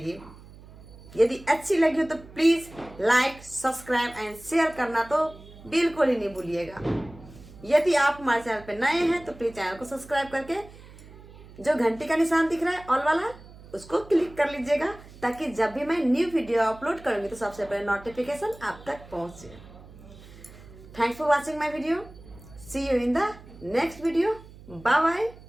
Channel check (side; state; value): right; noise; hum, 20 dB below the sound